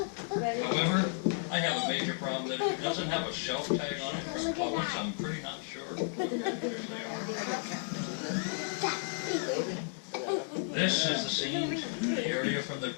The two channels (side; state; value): right; silent; 56 dB below the other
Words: However, I have a major problem that if it doesn't have a shelf tag on it from Publix, I'm pretty not sure what fish they are. This is the scene, the area from the